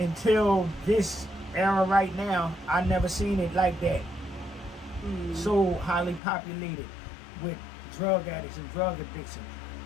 this era right now, I never seen it like that. So highly populated with drug addicts and drug addiction.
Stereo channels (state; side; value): drops out; right; at 6.2 s